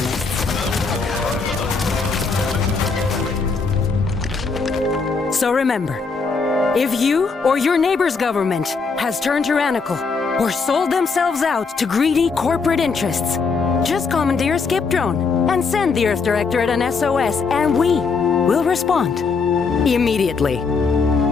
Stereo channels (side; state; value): right; quieter; 4.8 dB